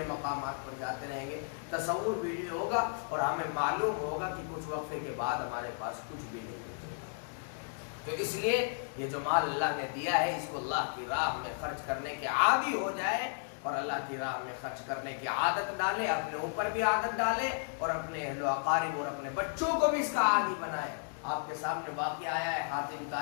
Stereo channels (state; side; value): silent; right; digital silence